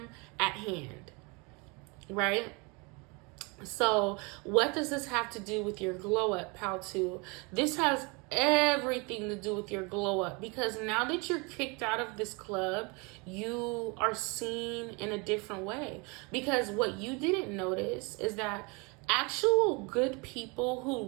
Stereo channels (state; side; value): quieter; left; 29.6 dB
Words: at hand, right? So what does this have to do with your glow up, pal 2? This has everything to do with your glow up, because now that you're kicked out of this club, you are seen in a different way. Because what you didn't notice is that actual good people who